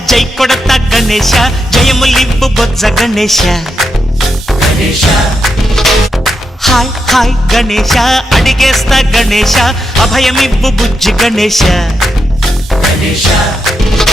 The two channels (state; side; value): normal; both; correlation 0.84